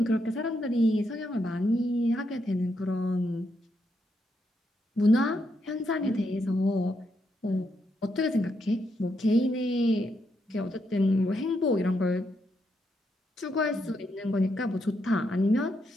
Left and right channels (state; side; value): normal; both; correlation 0.80